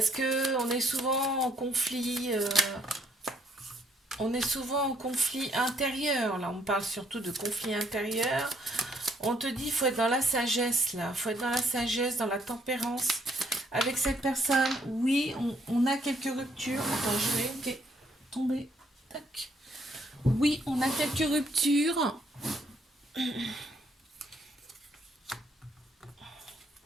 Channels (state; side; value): normal; both; correlation 0.69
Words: que on est souvent en conflit, on est souvent en conflit intérieur. Là, on parle surtout de conflit intérieur. On te dit, il faut être dans la sagesse là, faut être dans la sagesse, dans la tempérance. Avec cette personne, oui, on a quelques ruptures. Attends, je vais tomber. Tac. Oui, on a quelques ruptures.